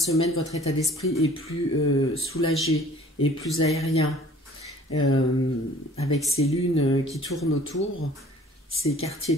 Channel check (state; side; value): normal; both; correlation 0.51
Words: votre état d'esprit est plus soulagé et plus aérien. Avec ces lunes qui tournent autour, ces quartiers